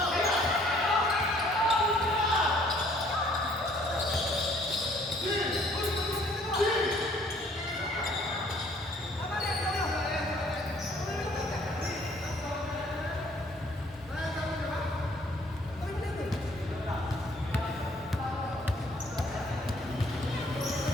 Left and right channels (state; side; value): normal; both; correlation 0.60